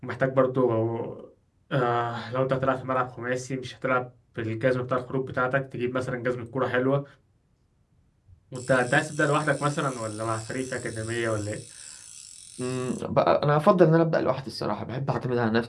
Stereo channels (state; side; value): identical; both; correlation 1.00